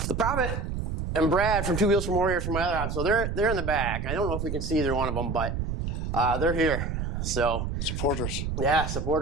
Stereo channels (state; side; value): noise; right; rumble, 3 dB below the sound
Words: Prophet and Brad from Two Wheels from Warriors from my other house, so they're in the back. I don't know if we can see either one of them, but they're here. So supporters. Yeah,